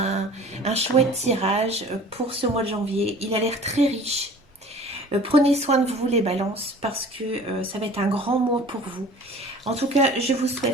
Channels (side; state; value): both; normal; correlation 0.45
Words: chouette tirage pour ce mois de janvier. Il a l'air très riche. Prenez soin de vous les balances parce que ça va être un grand mois pour vous. En tout cas, je vous